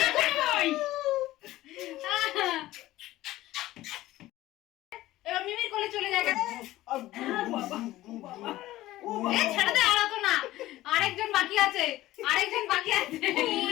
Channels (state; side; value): quieter; right; 16.1 dB